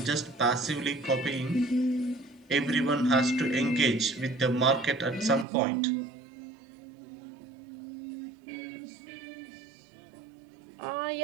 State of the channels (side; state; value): left; drops out; at 5.5 s